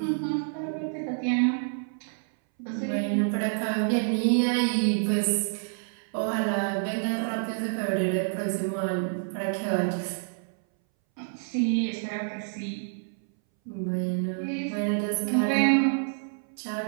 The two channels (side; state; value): left; silent; 59 dB below the other